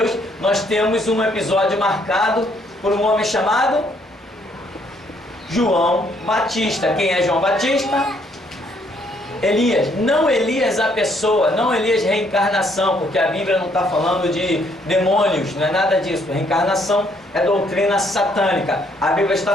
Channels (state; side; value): normal; both; correlation 0.68